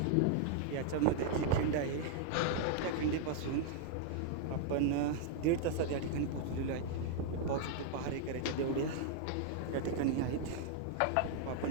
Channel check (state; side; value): different; both; correlation 0.00